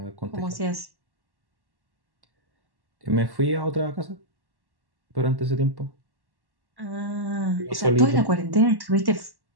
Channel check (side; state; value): left; late; 1.1 ms